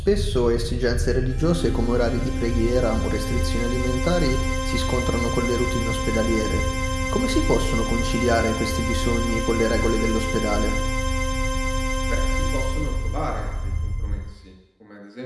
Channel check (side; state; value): both; identical; correlation 1.00